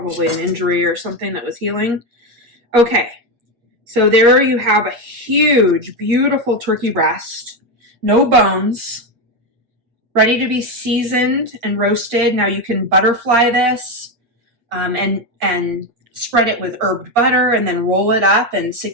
an injury or something that was healing. Okay, so there you have a huge, beautiful turkey breast. No bones, ready to be seasoned and roasted. Now you can butterfly this and spread it with herbed butter and then roll it up and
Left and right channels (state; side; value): late; left; 8.5 ms